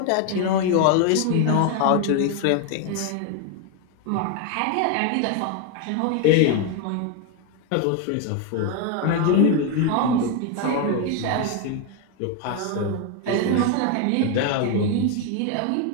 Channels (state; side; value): different; both; correlation 0.01